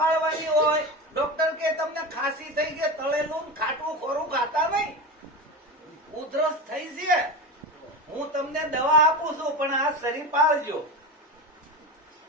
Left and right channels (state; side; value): normal; both; correlation 0.23